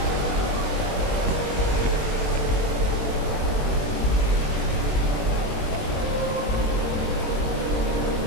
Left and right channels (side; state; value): right; late; 21 ms